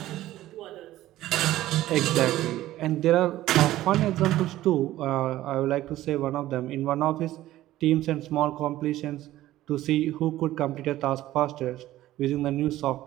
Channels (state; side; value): quieter; left; 14.9 dB